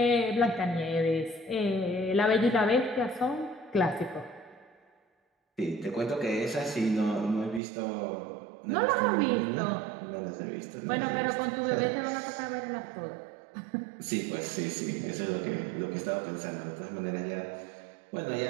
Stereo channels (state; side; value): drops out; left; at 7.6 s